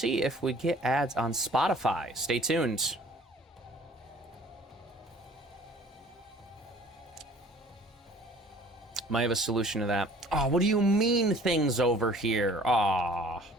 if we get ads on Spotify. Stay tuned. Might have a solution to that. Oh, what do you mean things over here? Aw.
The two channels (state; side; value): normal; both; correlation 0.52